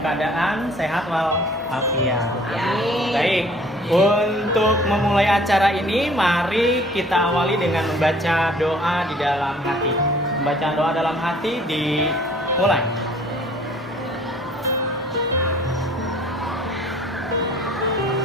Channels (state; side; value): normal; both; correlation 0.54